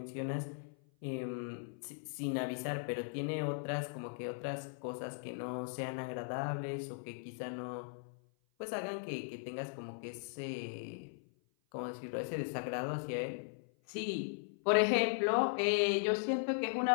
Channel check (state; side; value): silent; right; 52 dB below the other